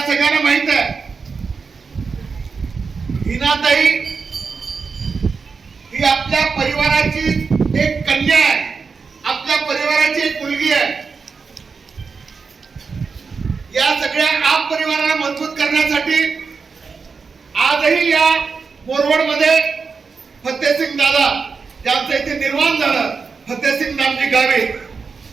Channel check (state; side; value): quieter; left; 5.1 dB